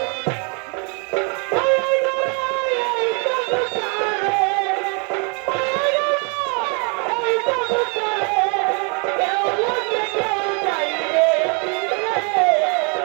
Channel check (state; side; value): quieter; left; 36.3 dB